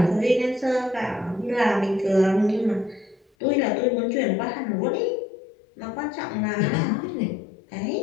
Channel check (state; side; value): drops out; right; at 3.2 s